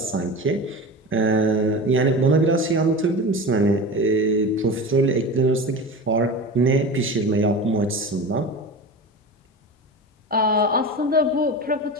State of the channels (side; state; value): both; normal; correlation 0.29